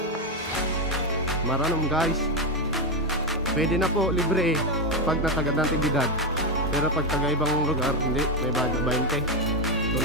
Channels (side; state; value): both; normal; correlation 0.09